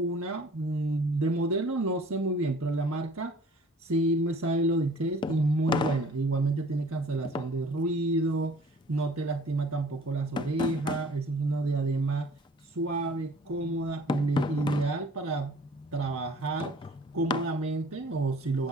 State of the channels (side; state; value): both; normal; correlation 0.51